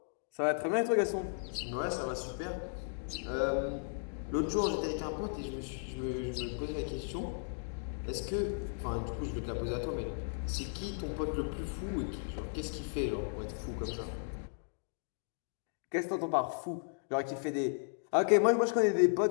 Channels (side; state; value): right; silent; digital silence